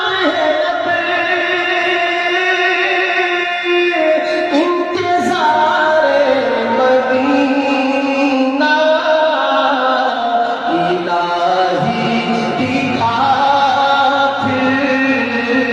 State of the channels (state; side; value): identical; both; correlation 1.00